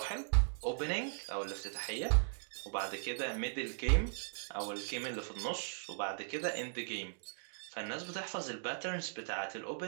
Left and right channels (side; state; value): left; silent; digital silence